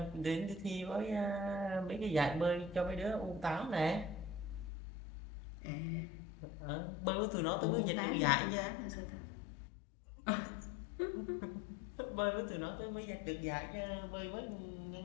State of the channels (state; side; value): drops out; right; at 4.7 s